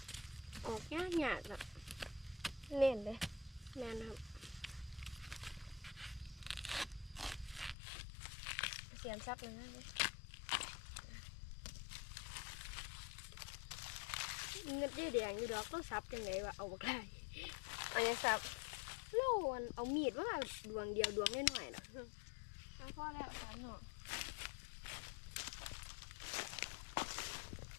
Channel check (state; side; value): drops out; right; at 7.8 s